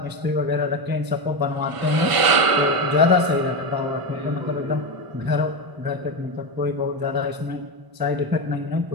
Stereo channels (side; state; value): left; late; 1.0 ms